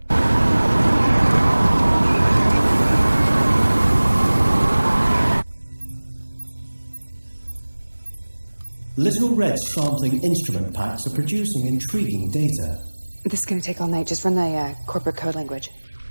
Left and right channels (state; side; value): inverted; both; correlation -1.00